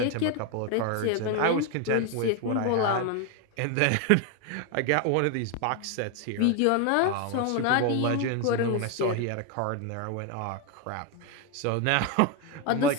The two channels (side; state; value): both; different; correlation 0.01